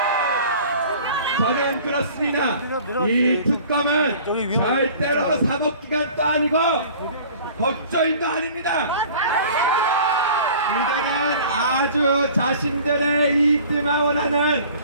저는 그렇습니다. 이 특검은 절대로 사법기관도 아니고 법조인도 아닙니다. 이들은 아주 자신들의 이익들만 원하는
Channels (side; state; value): both; inverted; correlation -0.47